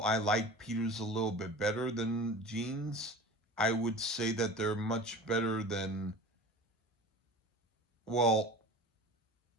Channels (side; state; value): both; normal; correlation 0.36